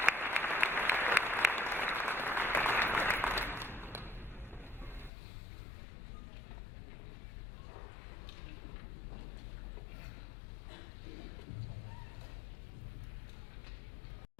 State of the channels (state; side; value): drops out; right; at 5.1 s